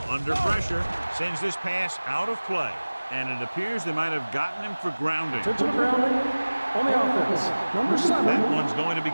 Under pressure, sends this pass out of play. And it appears they might have gotten him for grounding. Intentional grounding on the offense. Number 7. That one's going to be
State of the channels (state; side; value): inverted; both; correlation -1.00